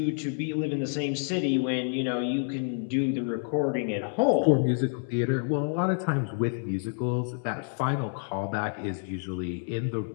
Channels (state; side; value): silent; right; 59 dB below the other